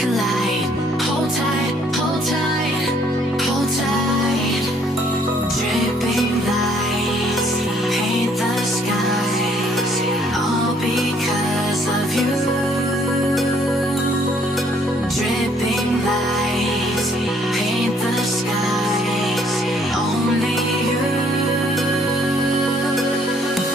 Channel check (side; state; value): both; normal; correlation 0.64